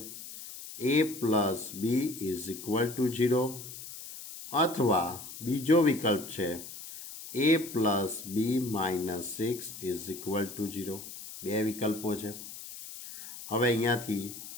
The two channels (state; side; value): noise; left; hiss, 12 dB below the sound